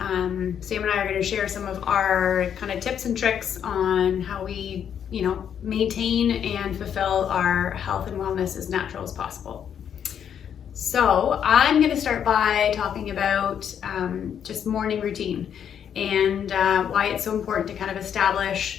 Sam and I are going to share some of our kind of tips and tricks on how we, maintain and fulfill our health and wellness as natural as possible. So I'm going to start by talking about just morning routine and why it's so important to kind of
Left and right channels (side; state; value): right; quieter; 8.6 dB